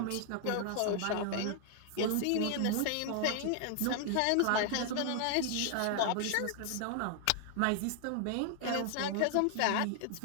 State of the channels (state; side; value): different; both; correlation 0.00